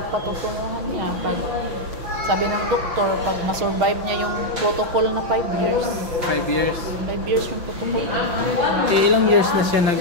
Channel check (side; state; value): left; late; 5.9 ms